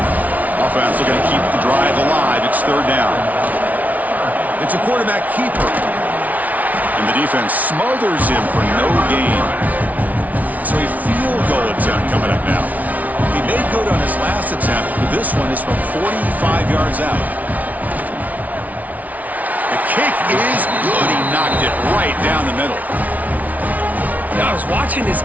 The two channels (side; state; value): left; late; 0.073 ms